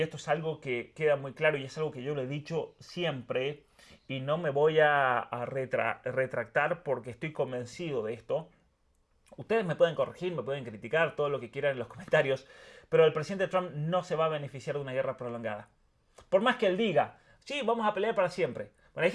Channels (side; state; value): both; identical; correlation 1.00